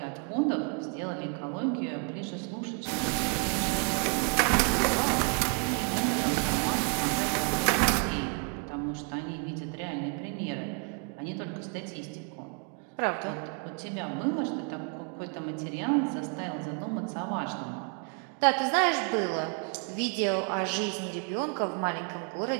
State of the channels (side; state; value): left; quieter; 39.5 dB